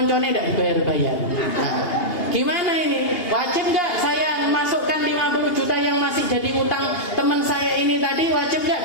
tidak dibayar-bayar. Nah, gimana ini? Wajib nggak saya masukkan 50 juta yang masih jadi utang teman saya ini tadi, wajib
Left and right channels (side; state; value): right; late; 2.8 ms